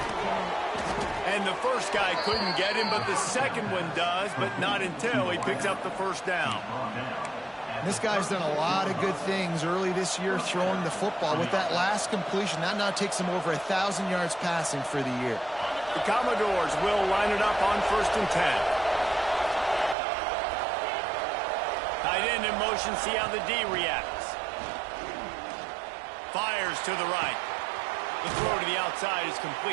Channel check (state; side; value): drops out; left; at 20.0 s